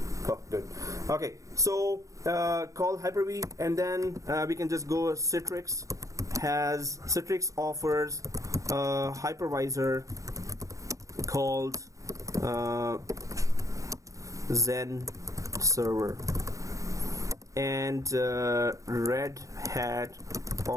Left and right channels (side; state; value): left; late; 0.16 ms